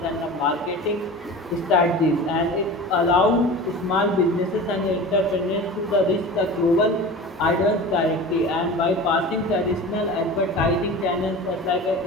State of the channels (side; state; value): both; normal; correlation 0.34